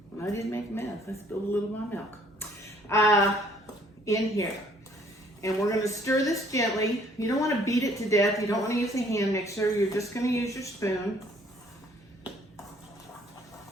I didn't make a mess. I spilled a little of my milk in here. And we're going to stir this gently. You don't want to beat it to death. You don't want to use a hand mixer. You're just going to use your spoon.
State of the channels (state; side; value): normal; both; correlation 0.61